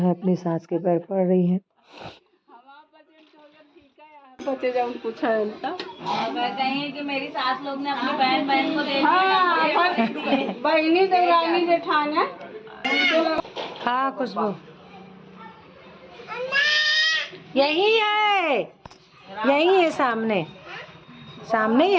अपनी सास के पैर पड़ रही है। बचे जाओ कुछ है उनका। कहीं कि मेरी सास लोग ने अपनी बहन को दे दिया। बहनी देवरानी जेठानी। हाँ खुशबू यही है, यही है, सामने सामने ही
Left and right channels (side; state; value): both; identical; correlation 1.00